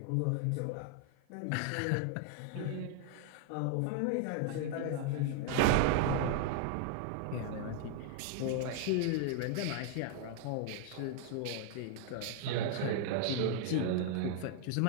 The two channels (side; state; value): both; different; correlation 0.00